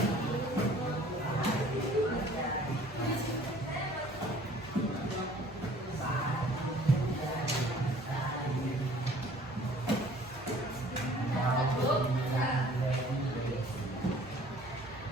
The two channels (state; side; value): normal; both; correlation 0.53